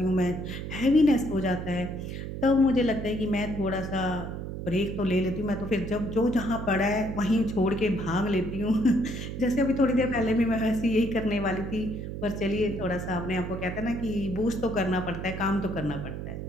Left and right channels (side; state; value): right; noise; hum, 7 dB below the sound